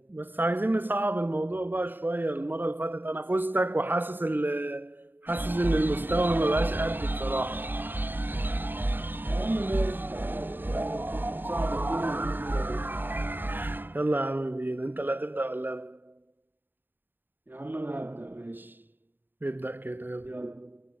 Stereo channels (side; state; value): left; late; 0.094 ms